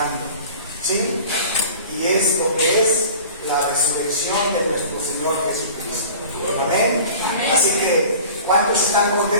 ¿sí? Y es lo que es la resurrección de nuestro Señor Jesucristo. Amén. Así que, ¿cuántos están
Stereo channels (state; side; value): inverted; both; correlation -0.41